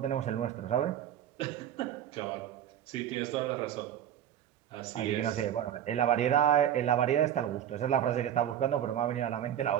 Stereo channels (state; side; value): quieter; left; 10.6 dB